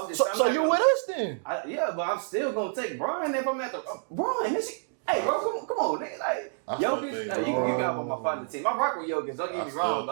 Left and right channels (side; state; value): left; silent; digital silence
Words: I'm just. So, I'm so not you gonna- with us then? Yeah, but I'm still gonna take Brian if I'm at the Brian. This shit, hey, bro, come on, nigga. Like I still Jokic, think you LeBron. can hop on my partner team. I rock with Jokic. Don't I get me still wrong,